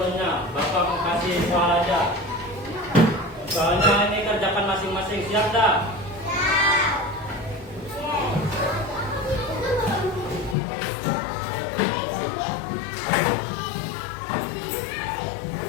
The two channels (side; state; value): right; drops out; at 10.6 s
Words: Bapak mau kasih soal aja. Soalnya ini kerjakan masing-masing, siap dah?